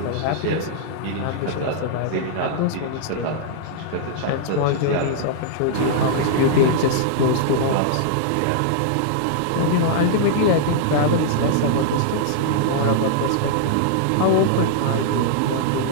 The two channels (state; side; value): different; both; correlation -0.01